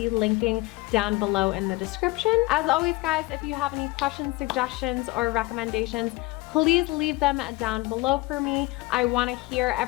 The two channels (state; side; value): quieter; right; 22.2 dB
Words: linking down below in the description. As always, guys, if you have any questions, suggestions, or recommendations, please leave them down below for me. I want to hear